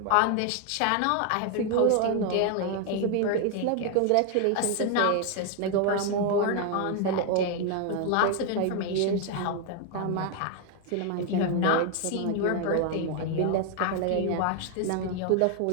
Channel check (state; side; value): different; both; correlation 0.01